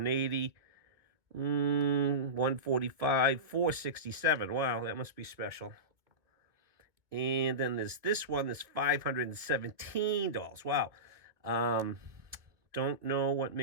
145, 467. Wow, that must be special. And then there's this one that's $517. Wow. Don't know what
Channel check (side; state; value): left; late; 2.0 ms